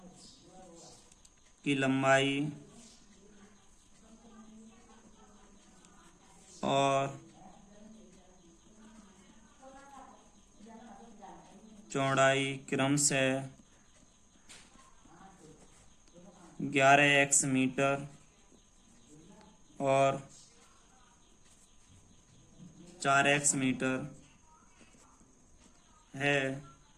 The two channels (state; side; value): identical; both; correlation 1.00